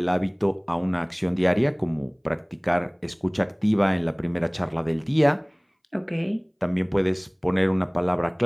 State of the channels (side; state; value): both; identical; correlation 1.00